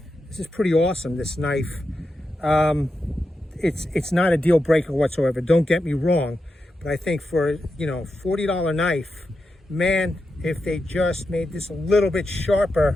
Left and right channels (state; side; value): normal; both; correlation 0.88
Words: pretty awesome, this knife. It's not a deal breaker whatsoever. Don't get me wrong. But I think for, $40 knife, man, if they just made this a little bit